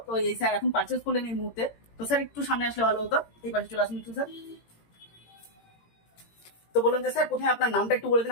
তো এই স্যার এখন পারচেজ করলেন এই মুহূর্তে। তো স্যার একটু সামনে আসলে ভালো হতো, এই পাশে চলে আসুন একটু স্যার। তো বলুন যে স্যার প্রথমে আপনার নামটা একটু বলে দিন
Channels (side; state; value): right; late; 18 ms